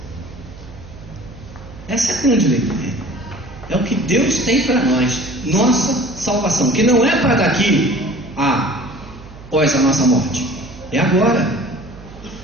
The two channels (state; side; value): noise; right; hum, 17 dB below the sound